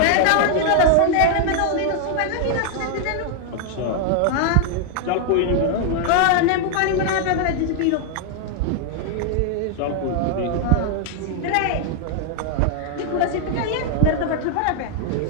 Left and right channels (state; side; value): different; both; correlation 0.00